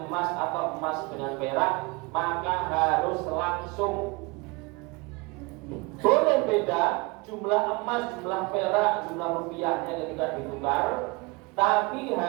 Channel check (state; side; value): quieter; left; 26.7 dB